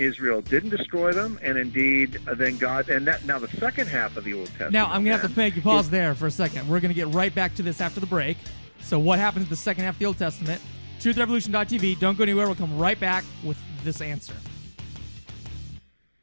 didn't destroy them, and indeed, then God, now the second half of the Old Testament. Now, I'm going to have to make you pause there for a second. We're going to get right back to this after the break. So what happens in the second half of the Old Testament? TruthRevolution.tv. Don't go anywhere. We'll come right back with this answer.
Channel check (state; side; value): inverted; both; correlation -1.00